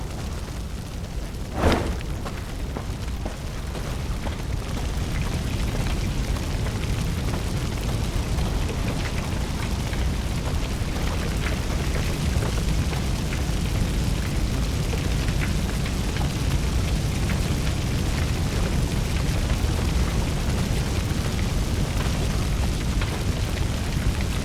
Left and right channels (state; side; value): identical; both; correlation 1.00